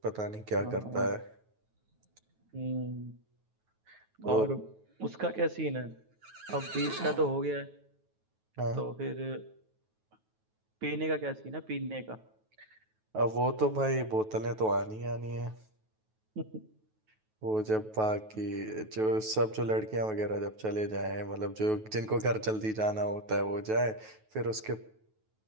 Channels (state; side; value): late; left; 9.3 ms